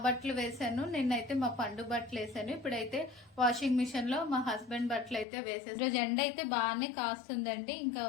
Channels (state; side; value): drops out; right; at 5.2 s